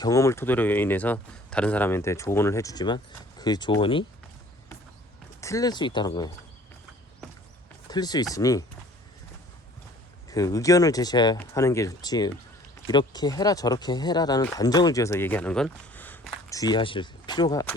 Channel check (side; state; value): both; normal; correlation 0.52